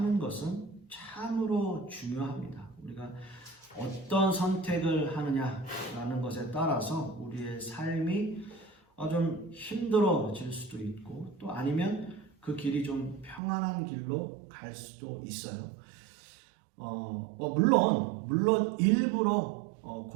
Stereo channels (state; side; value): drops out; left; at 13.4 s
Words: 것은 참으로 중요합니다. 우리가 어떤 선택을 하느냐라는 것에 따라서 우리의 삶이 좀 힘들어질 수도 있고 또 아니면 그 길이 좀 평안한 길로 갈 수도 있어요. 물론 일부러